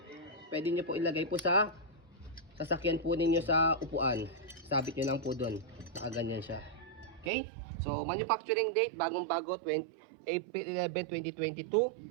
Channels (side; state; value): left; drops out; at 7.3 s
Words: pwede nyo po ilagay po sa sasakyan po ninyo sa upuan. Sabit nyo lang po doon. Nakaganyan siya. Okay? So, manufacturing date, bagong-bago, April 11,